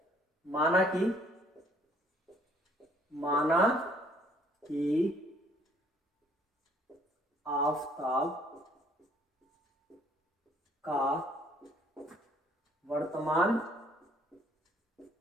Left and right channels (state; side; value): normal; both; correlation 0.61